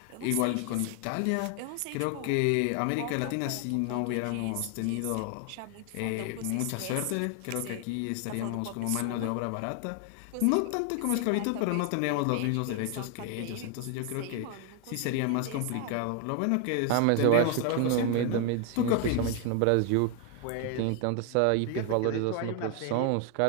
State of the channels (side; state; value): both; different; correlation 0.00